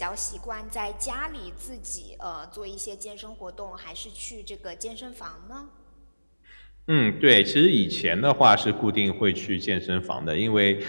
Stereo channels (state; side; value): inverted; both; correlation -1.00